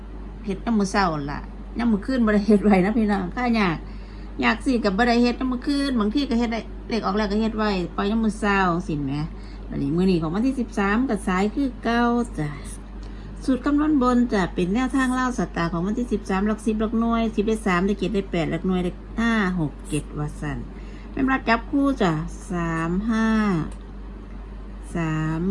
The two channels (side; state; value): both; identical; correlation 1.00